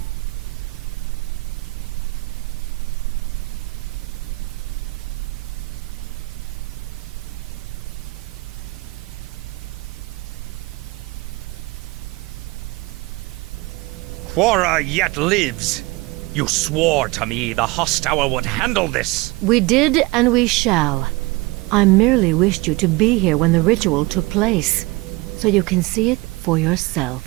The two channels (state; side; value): quieter; left; 22.7 dB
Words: Quora yet lives. You swore to me the Hosttower would handle this. We did, and we shall. I merely wished you to be here when the ritual took place, so you can see it for yourself.